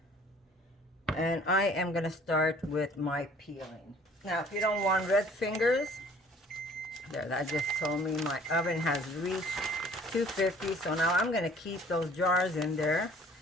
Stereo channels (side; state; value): both; normal; correlation 0.53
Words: and I am going to start with my peeling. Now, if you don't want red fingers, there, that just told me my oven has reached 250. So now I'm going to keep those jars in there